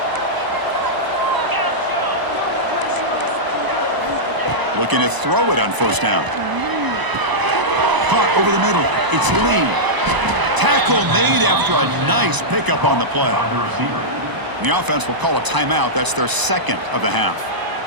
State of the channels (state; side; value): late; left; 1.0 ms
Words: Looking to throw it on first down. Caught over the middle. It's Lee. Tackle made after a nice pickup on the play. The offense will call a timeout. That's their second of the half.